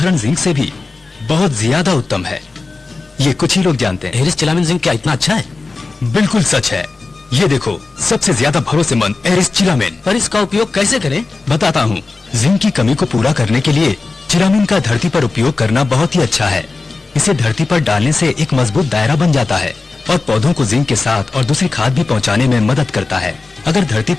जिंक से भी बहुत ज्यादा उत्तम है। ये कुछ ही लोग जानते हैं। एरिस चिलामिन जिंक क्या इतना अच्छा है। बिल्कुल सच है। ये देखो, सबसे ज्यादा भरोसेमंद एरिस चिलामिन। पर इसका उपयोग कैसे करें, बताता हूँ। जिंक की कमी को पूरा करने के लिए चिलामिन का धरती पर उपयोग करना बहुत ही अच्छा है। इसे धरती पर डालने से एक मजबूत दायरा बन जाता है और पौधों को जिंक के साथ और दूसरी खाद भी पहुंचाने में मदद करता है। अगर धरती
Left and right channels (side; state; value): right; quieter; 3.8 dB